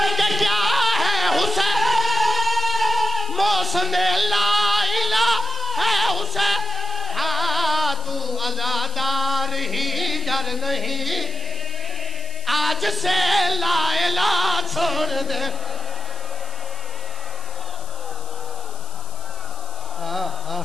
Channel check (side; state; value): left; noise; hiss, 17 dB below the sound